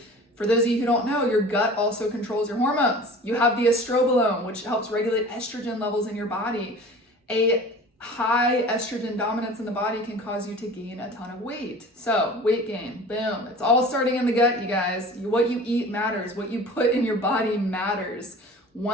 For those of you who don't know, your gut also controls your hormones. You have the estrobolome, which helps regulate estrogen levels in your body. A high estrogen dominance in the body can cause you to gain a ton of weight. So weight gain, boom. It's all starting in the gut, you guys. What you eat matters. What you put in your body matters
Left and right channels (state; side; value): normal; both; correlation 0.42